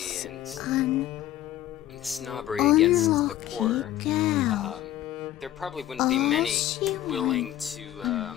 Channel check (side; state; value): right; quieter; 13.2 dB